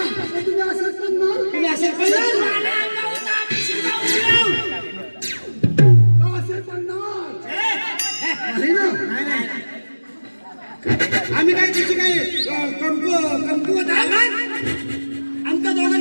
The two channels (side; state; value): both; inverted; correlation -1.00